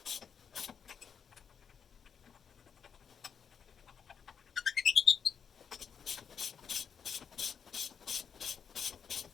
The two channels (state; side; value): quieter; right; 7.1 dB